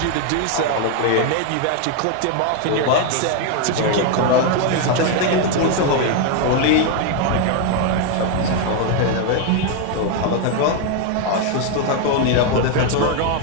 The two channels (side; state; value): both; different; correlation 0.01